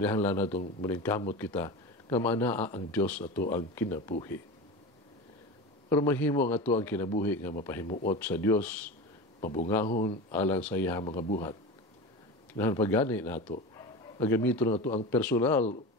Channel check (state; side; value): normal; both; correlation 0.27